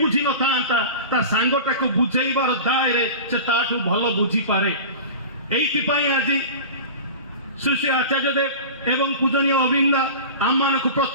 ନଥାନ୍ତା ତା ସାଙ୍ଗଟାକୁ ବୁଝେଇବାର ଦାୟରେ ସେ ତାଠୁ ଭଲ ବୁଝିପାରେ। ଏଇଥିପାଇଁ ଆଜି ଶ୍ରୀ ଶ୍ରୀ ଆଚାର୍ଯ୍ୟ ଦେବ ଏବଂ ପୂଜନୀୟ ଅବିନ୍ଦା ଆମମାନଙ୍କୁ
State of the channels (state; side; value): inverted; both; correlation -0.33